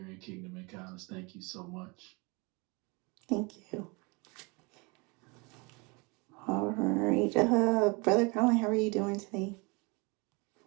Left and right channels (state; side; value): quieter; left; 28.7 dB